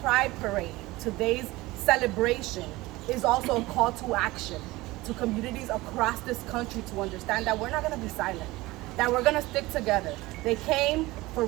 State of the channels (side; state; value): left; quieter; 19.9 dB